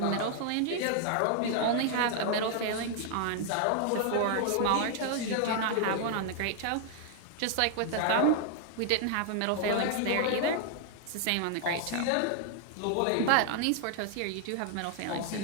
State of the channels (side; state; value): both; different; correlation 0.00